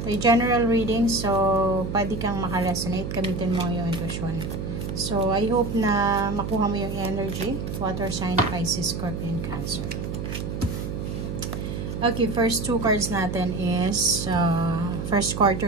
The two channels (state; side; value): noise; right; hum, 5 dB below the sound